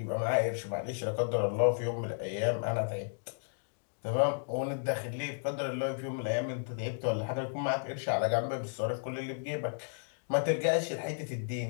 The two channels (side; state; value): right; silent; digital silence